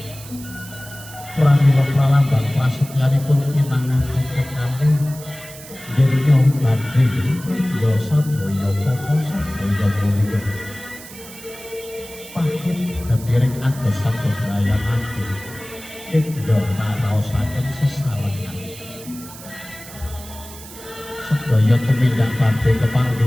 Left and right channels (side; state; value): right; noise; hiss, 16 dB below the sound